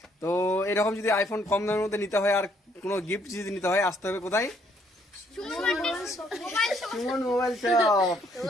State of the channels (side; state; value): both; normal; correlation 0.68